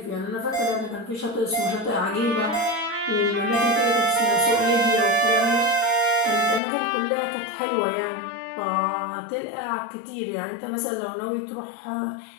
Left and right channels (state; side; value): drops out; right; at 6.6 s